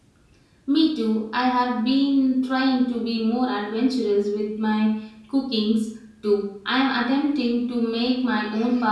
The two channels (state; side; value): identical; both; correlation 1.00